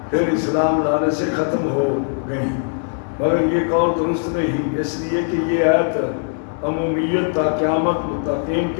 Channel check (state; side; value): silent; right; digital silence